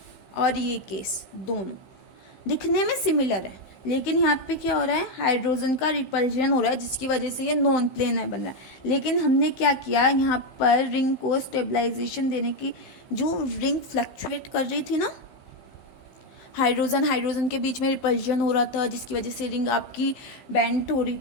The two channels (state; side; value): late; right; 15 ms